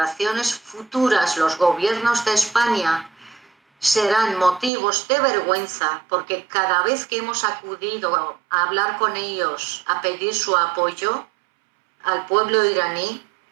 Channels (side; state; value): left; drops out; at 4.7 s